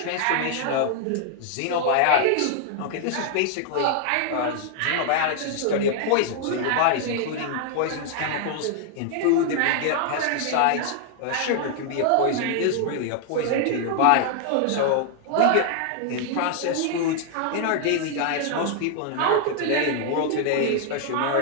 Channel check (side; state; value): both; different; correlation 0.00